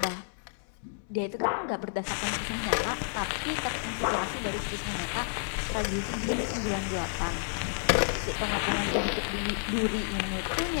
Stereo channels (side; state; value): right; silent; digital silence